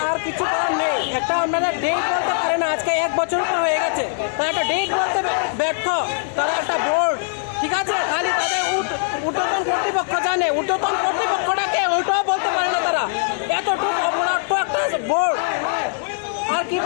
আর কিছু করার নেই। একটা আপনারা ডেট বলতে পারে না, আজকে 1 বছর হয়ে গেছে, তারা একটা ডেট বলতে ব্যর্থ। তারা একটা বোর্ড, ঠিক আছে, খালি তাদের ঊর্ধ্বতন কর্তৃপক্ষ জানে, ঊর্ধ্বতন কর্তৃপক্ষটাকে ওইটাও বলতে পারে না তারা। এতটুকু অপরাধ একটা বোর্ড, আর কি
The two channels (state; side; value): silent; right; 65 dB below the other